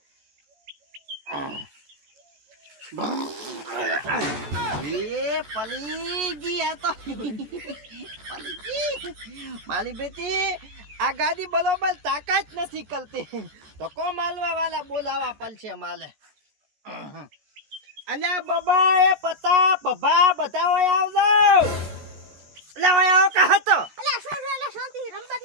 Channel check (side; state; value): left; late; 14 ms